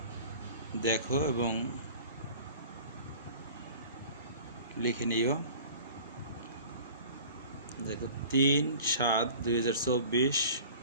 দেখো এবং লিখে নিও। দেখো, 3/7/2024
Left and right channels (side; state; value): both; inverted; correlation -0.44